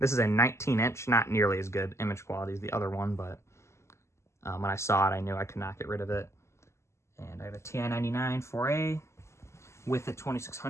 is a 19-inch, not nearly as good image quality as the other one, but when I saw it, I knew I could not get rid of it. And I have a TI-99 4A with a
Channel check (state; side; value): late; right; 0.13 ms